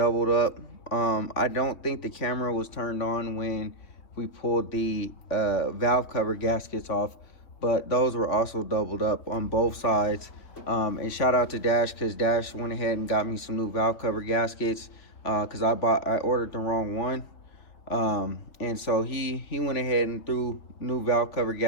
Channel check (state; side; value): late; right; 3.4 ms